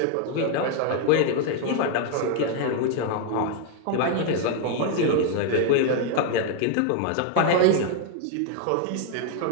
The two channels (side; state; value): both; different; correlation 0.00